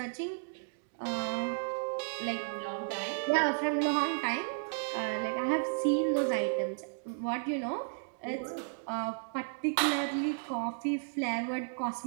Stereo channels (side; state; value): left; silent; digital silence